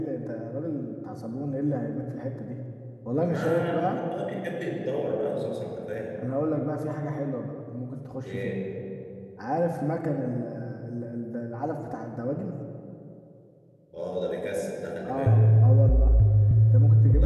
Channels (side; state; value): both; identical; correlation 1.00